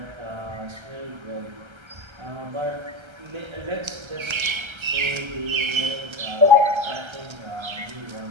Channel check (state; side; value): late; left; 1.3 ms